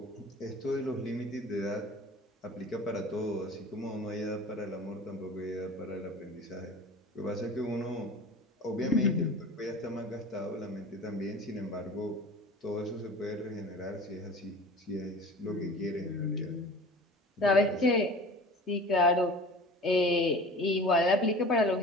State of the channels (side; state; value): both; normal; correlation 0.40